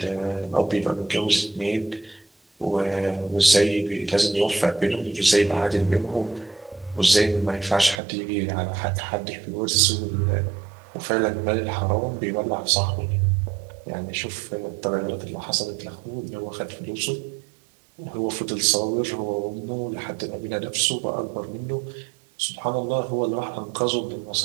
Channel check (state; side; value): drops out; left; at 8.0 s